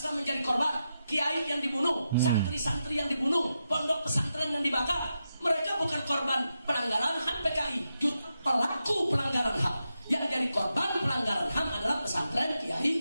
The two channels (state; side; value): inverted; both; correlation -0.87